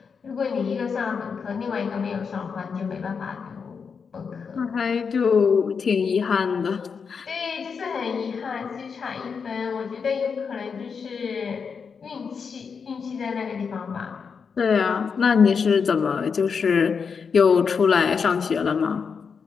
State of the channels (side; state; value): right; quieter; 5.9 dB